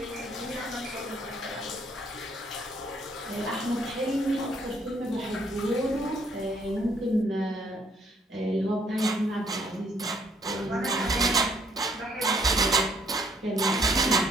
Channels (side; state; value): both; normal; correlation 0.66